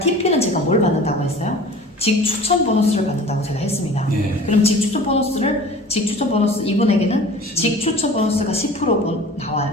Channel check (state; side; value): normal; both; correlation 0.42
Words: 제가 뭘 받는다고 했어요? 직추천 보너스를 받는다고 제가 했습니다. 그럼 직추천 보너스 이분에게는 직추천 보너스가 10% 나와요.